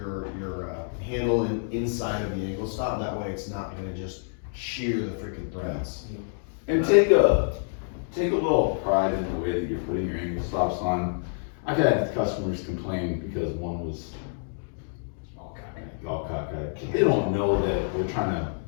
handle inside of the angle stop. That way it's not gonna just shear the freaking threads. And take a little pride in the way that you're putting your angle stops on. I've had customers complain because one was all cockeyed. They don't know that we're trying to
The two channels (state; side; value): silent; right; digital silence